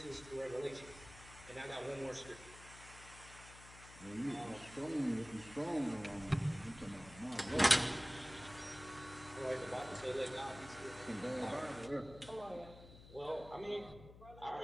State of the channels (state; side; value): noise; left; hum, 17 dB below the sound